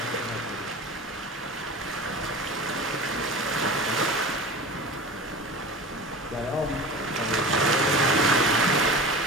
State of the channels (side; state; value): both; normal; correlation 0.34